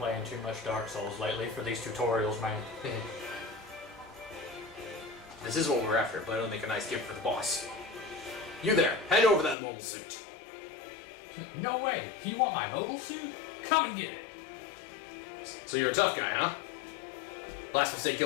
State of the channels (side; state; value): right; drops out; at 9.6 s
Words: too much Dark Souls lately for these tutorials, man. This is what we're after, but it'll make a nice gift for the boss. You there, hand over that mobile suit. No way! You want my mobile suit? Come and get it! So you're a tough guy, huh? Last mistake